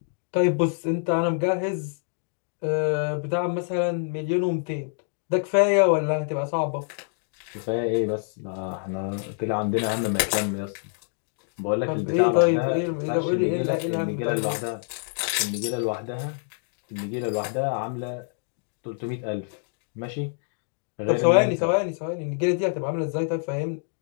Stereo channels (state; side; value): silent; right; 61 dB below the other